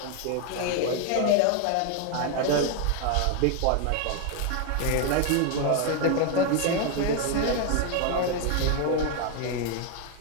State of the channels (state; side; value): different; both; correlation 0.01